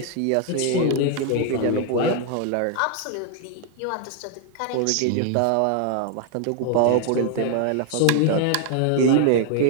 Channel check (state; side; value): different; both; correlation 0.00